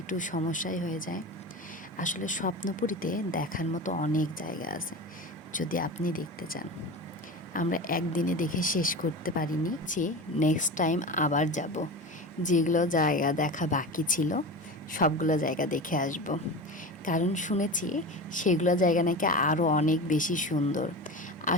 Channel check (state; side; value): normal; both; correlation 0.28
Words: সমস্যাই হয়ে যায়। আসলে স্বপ্নপুরীতে দেখার মতো অনেক জায়গা আছে, যদি আপনি দেখতে চান। আমরা একদিনে দেখে শেষ করতে পারিনি, যে নেক্সট টাইম আবার যাব। যেগুলো জায়গা দেখা বাকি ছিল সবগুলো জায়গা দেখে আসব, কারণ শুনেছি সেগুলো জায়গা নাকি আরও অনেক বেশি সুন্দর।